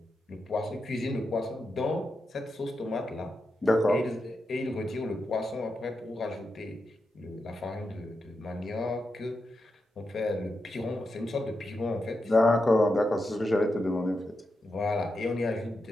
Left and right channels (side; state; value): both; normal; correlation 0.87